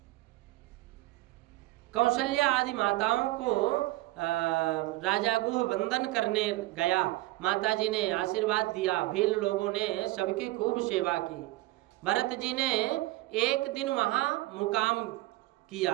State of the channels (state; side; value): quieter; left; 18.8 dB